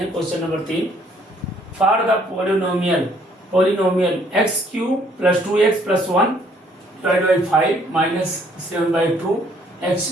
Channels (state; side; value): normal; both; correlation 0.63